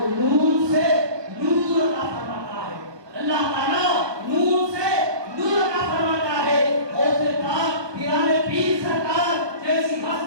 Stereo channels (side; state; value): left; late; 1.2 ms